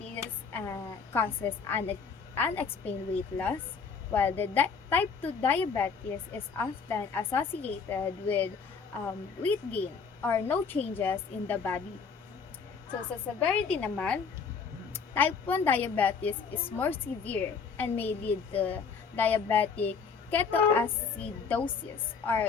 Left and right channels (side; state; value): right; quieter; 5.6 dB